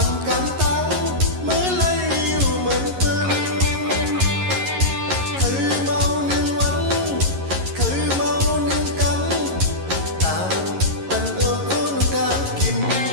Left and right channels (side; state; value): left; late; 11 ms